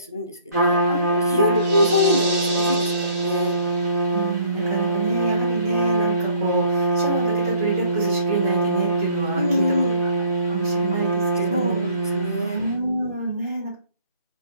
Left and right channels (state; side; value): inverted; both; correlation -0.58